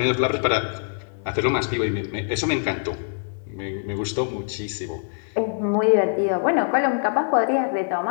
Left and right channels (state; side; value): silent; right; digital silence